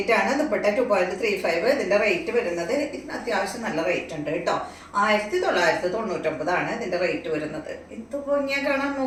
ആണ്, ദുപ്പട്ട 2.35. ഇതിന്റെ റേറ്റ് വരുന്നത് ഇതിന് അത്യാവശ്യം നല്ല റേറ്റ് ഉണ്ട് കേട്ടോ. 1999 ഇതിന്റെ റേറ്റ് വരുന്നത്. ഇത് ഭംഗിയാ കാണാൻ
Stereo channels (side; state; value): both; identical; correlation 1.00